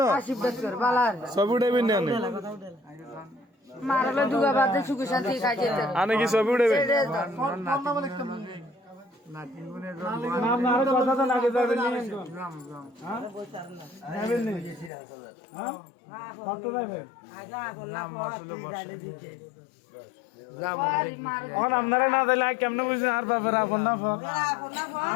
না ছবি উঠাইবেন না মারালে দুগা বাদে সুখ শান্তি খাই যেতে আমি কি ছবি উঠাইবেন নাম না আর কথা তো লাগে যাবেন নি যাবেন নি হ্যাঁ কত যাবেন এখন আপনারা না দিলে কেমনে বুঝছেন আর ব্যাপারে আপন না ফক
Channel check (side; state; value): right; drops out; at 14.9 s